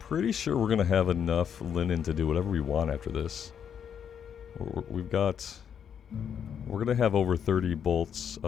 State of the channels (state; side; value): quieter; right; 8.1 dB